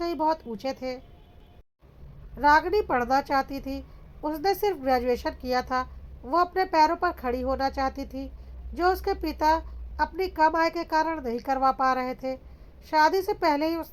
ही बहुत ऊंचे थे। रागनी पढ़ना चाहती थी। उसने सिर्फ ग्रेजुएशन किया था। वो अपने पैरों पर खड़ी होना चाहती थी, जो उसके पिता अपनी कम आय के कारण नहीं करवा पा रहे थे। शादी से पहले ही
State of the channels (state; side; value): identical; both; correlation 1.00